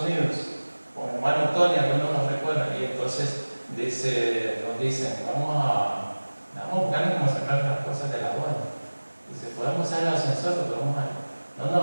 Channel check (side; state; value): both; inverted; correlation -1.00